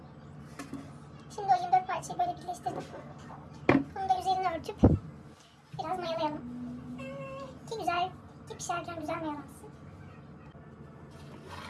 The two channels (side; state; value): both; identical; correlation 1.00